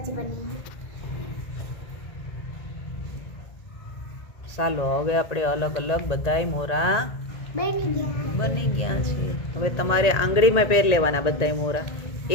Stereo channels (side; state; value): right; late; 1.8 ms